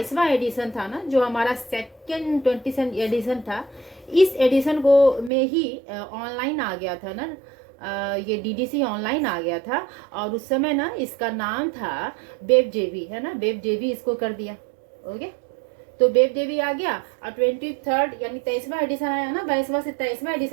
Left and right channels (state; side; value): drops out; left; at 5.3 s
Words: एडिशन था ना, जो हमारा सेकेंड 20th एडिशन था, इस एडिशन को में ही ऑनलाइन आ गया था ना, ये डीडीसी ऑनलाइन आ गया था। और उस समय ना इसका नाम था बेब डेवी, है ना, बेब डेवी इसको कर दिया। ओके, तो बेब डेवी आ गया, और 23rd यानी 23वां एडिशन आया ना, 22वां से 23वां